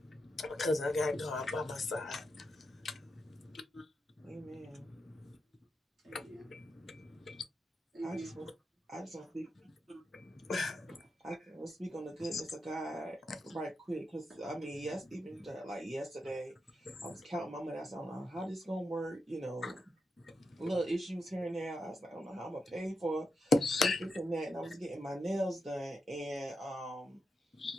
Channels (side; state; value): both; normal; correlation 0.86